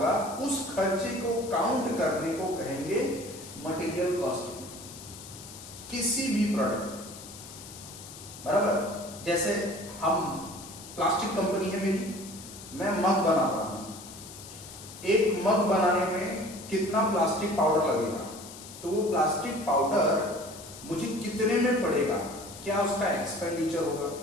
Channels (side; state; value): left; noise; hiss, 15 dB below the sound